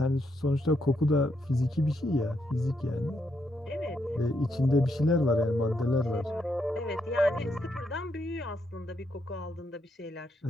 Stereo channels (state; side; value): normal; both; correlation 0.78